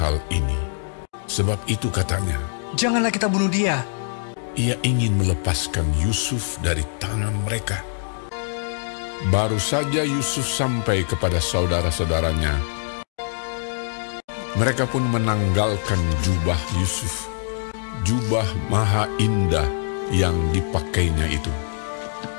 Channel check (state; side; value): silent; right; digital silence